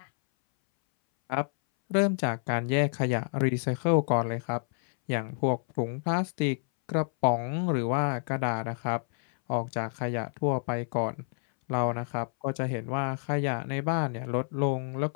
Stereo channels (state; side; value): silent; right; 59 dB below the other